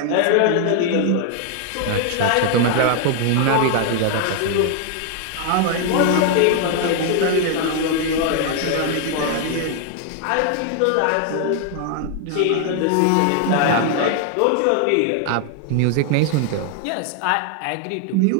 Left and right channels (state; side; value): different; both; correlation 0.00